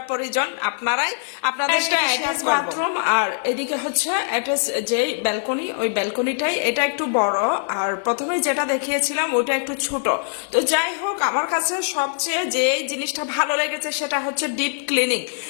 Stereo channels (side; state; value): right; silent; digital silence